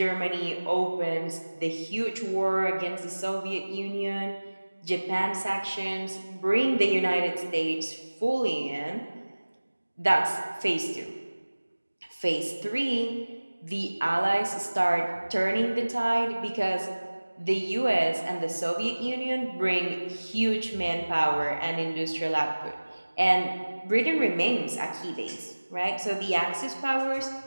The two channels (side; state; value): both; inverted; correlation -1.00